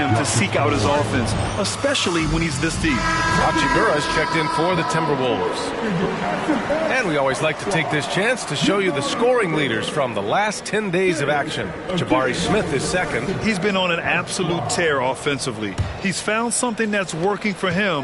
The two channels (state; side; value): identical; both; correlation 1.00